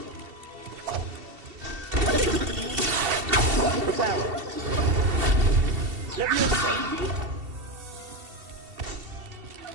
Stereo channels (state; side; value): late; left; 2.7 ms